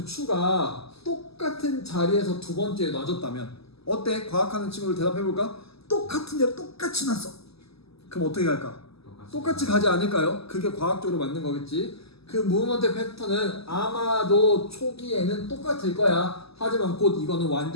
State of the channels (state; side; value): late; right; 0.77 ms